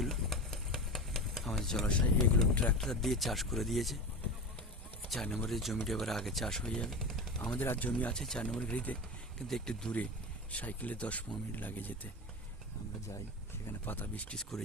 আমাদের জলাশয়, এইগুলো ট্রাক্টর দিয়ে চাষ করে দিয়েছে। 4 নম্বরের জমিটা এবার আগে চাষ হয়ে যাবে। আমাদের আর জমি আছে 4 নম্বর ঘড়িতে, কিন্তু একটু দূরে, সাইকেলে 10-15 মিনিট লাগে যেতে। আমরা যাই সেখানে, পাতা বীজ টিজ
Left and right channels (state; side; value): normal; both; correlation 0.26